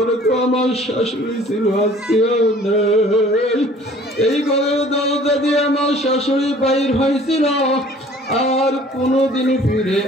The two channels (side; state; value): both; normal; correlation 0.52